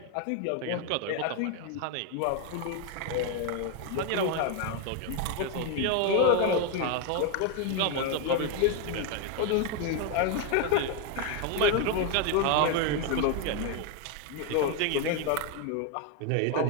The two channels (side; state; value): both; different; correlation 0.01